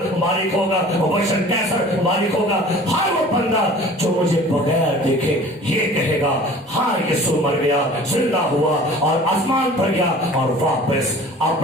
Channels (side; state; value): both; normal; correlation 0.45